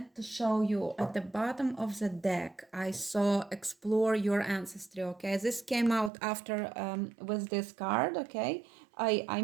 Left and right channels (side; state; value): left; drops out; at 6.1 s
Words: to show you at the bottom of the deck, I saw explore your ancestry, okay? This came out after with this card, okay? I